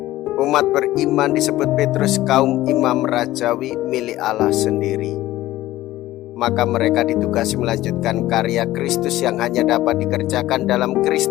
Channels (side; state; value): right; quieter; 15.9 dB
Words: Umat beriman disebut Petrus kaum imam rajawi milik Allah sendiri. Maka mereka ditugasi melanjutkan karya Kristus yang hanya dapat dikerjakan dalam